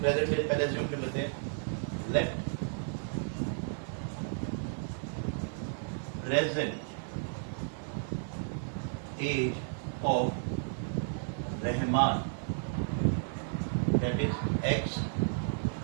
एज पहले अज्यूम कर लेते हैं। Let present age of Rahman that is x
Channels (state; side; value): silent; left; 56 dB below the other